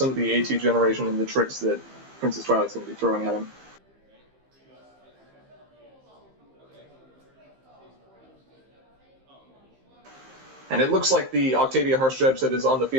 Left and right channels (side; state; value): left; late; 15 ms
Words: of the AT generation and the tricks that Princess Twilight's going to be throwing at him. And it looks like the Octavia Harsh Judge that is on the